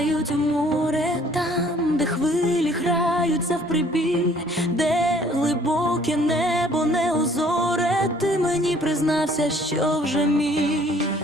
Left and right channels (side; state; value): both; normal; correlation 0.58